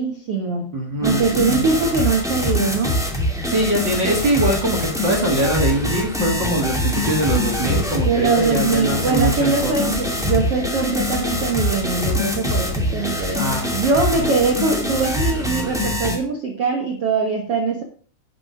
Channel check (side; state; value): both; normal; correlation -0.03